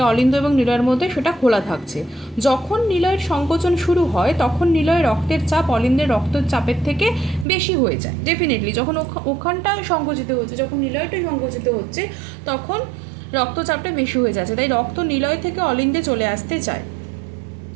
অলিন্দ এবং নিলয়ের মধ্যে সেটা খোলা থাকছে। যখন নিলয়ের সংকোচন শুরু হয় তখন নিলয়ের রক্তের চাপ অলিন্দের রক্তের চাপের থেকে বেশি হয়ে যায়। ডেফিনেটলি যখন ওখানটা সংকুচিত হচ্ছে, যখন নিলয়টা সংকুচিত হচ্ছে তখন রক্তচাপটা বেশি হয়ে যাচ্ছে, তাই রক্ত নিলয় থেকে অলিন্দে চলে আসতে চায়,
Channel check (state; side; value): drops out; left; at 7.5 s